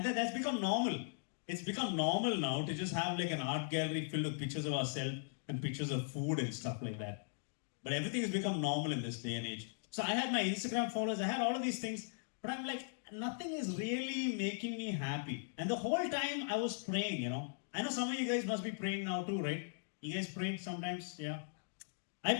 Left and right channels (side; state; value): right; silent; digital silence